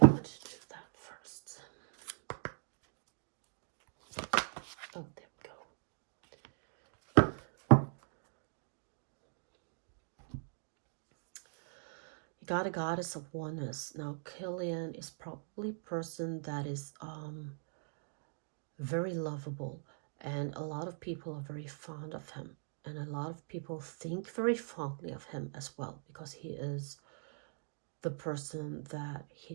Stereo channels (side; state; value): left; silent; digital silence